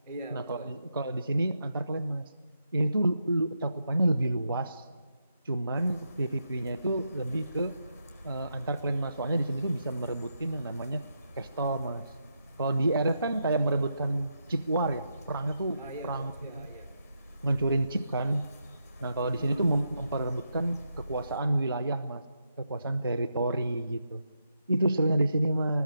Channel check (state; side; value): inverted; both; correlation -0.83